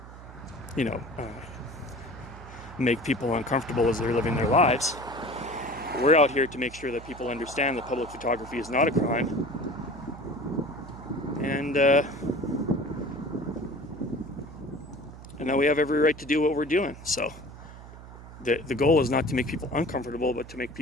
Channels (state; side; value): noise; right; hum, 16 dB below the sound